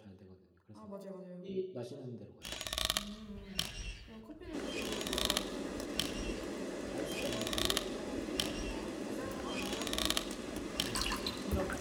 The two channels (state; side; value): identical; both; correlation 1.00